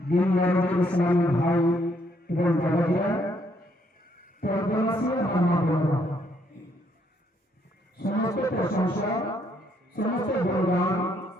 দিন ইসলামী ভাই এবং দাদাজিরা, সমস্ত প্রশংসা, সমস্ত গুণগান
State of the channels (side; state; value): both; normal; correlation 0.71